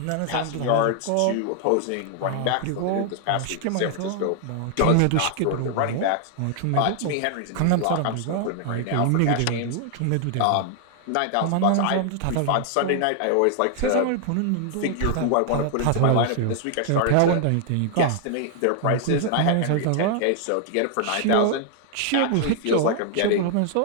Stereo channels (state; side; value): different; both; correlation 0.00